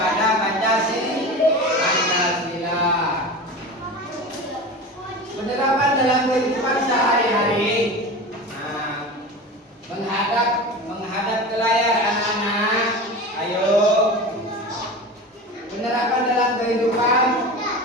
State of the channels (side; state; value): both; normal; correlation 0.30